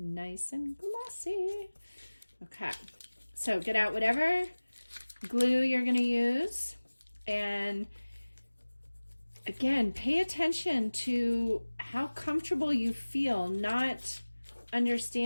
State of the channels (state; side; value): inverted; both; correlation -1.00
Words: and glossy. Okay, so get out whatever glue you're going to use. And again, pay attention to how comfortable you feel, not